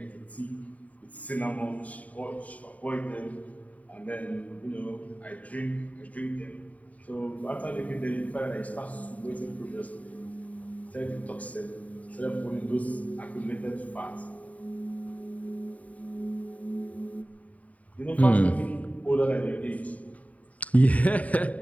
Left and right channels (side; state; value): right; late; 0.070 ms